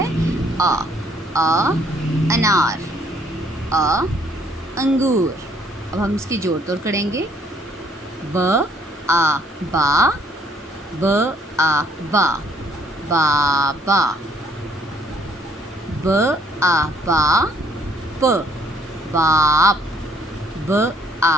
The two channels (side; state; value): both; normal; correlation 0.64